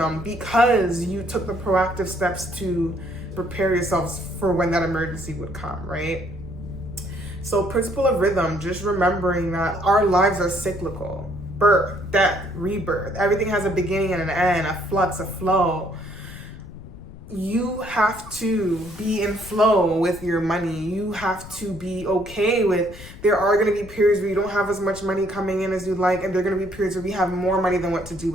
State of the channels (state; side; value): noise; left; rumble, 16 dB below the sound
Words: because you took the proactive steps to prepare yourselves for when that emergency would come, right? So principle of rhythm, just remembering that our lives are cyclical. Birth, death, rebirth. Everything has a beginning and an end, a flux, a flow. You have to be in flow with your money. You have to be okay with, there are going to be periods where you don't have as much money coming in as you'd like, and there are going to be periods where we have more money than what to do